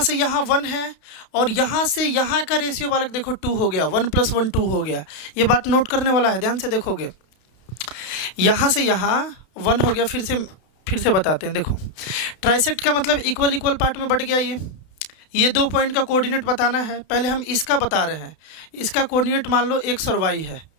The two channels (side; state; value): right; late; 32 ms